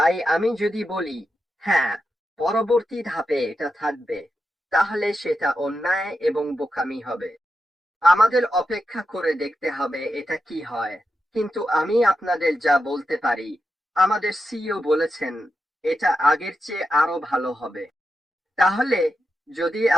আমি যদি বলি হ্যাঁ, পরবর্তী ধাপে এটা থাকবে, তাহলে সেটা অন্যায় এবং বোকামি হবে। আমাদের অপেক্ষা করে দেখতে হবে এটা কি হয়। কিন্তু আমি আপনাদের যা বলতে পারি, আমাদের সিইও বলেছেন এটা আগের চেয়ে আরো ভালো হবে। তাহলে যদি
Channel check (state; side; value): normal; both; correlation 0.88